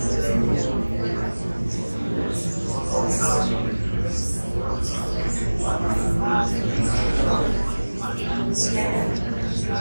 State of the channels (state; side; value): inverted; both; correlation -1.00